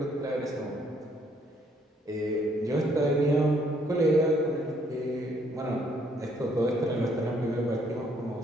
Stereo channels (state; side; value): normal; both; correlation 0.67